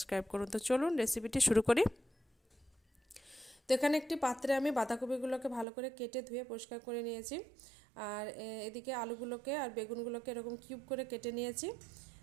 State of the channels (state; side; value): drops out; left; at 5.7 s